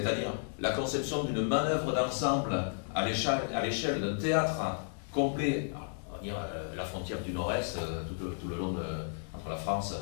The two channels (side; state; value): right; silent; digital silence